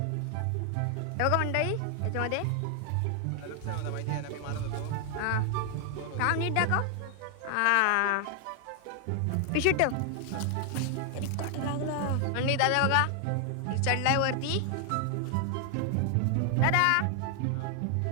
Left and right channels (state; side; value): different; both; correlation 0.00